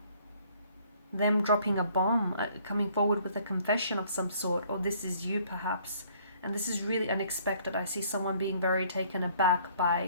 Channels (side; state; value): both; inverted; correlation -0.60